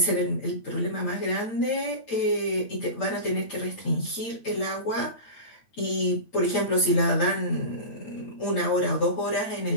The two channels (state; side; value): late; right; 8.8 ms